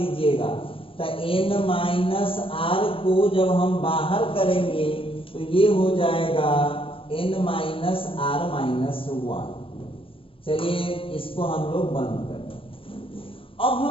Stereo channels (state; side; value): late; right; 0.26 ms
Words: तो n माइनस आर को जब हम बाहर करेंगे तो ये हो जाएगा n minus R minus one. चलिए इसको हम लोग बंद करें। अब